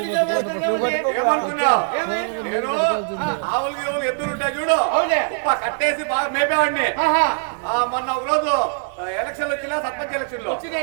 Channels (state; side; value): silent; left; digital silence